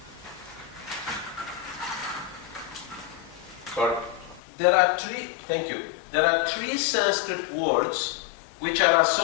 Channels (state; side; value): drops out; right; at 4.4 s